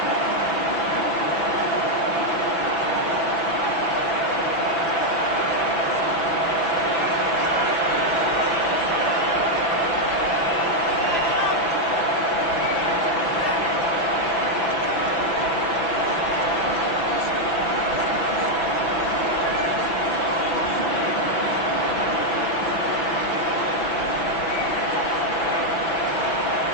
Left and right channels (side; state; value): right; late; 6.0 ms